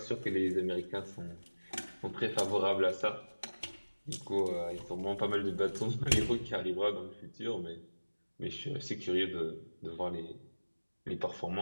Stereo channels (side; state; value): both; inverted; correlation -1.00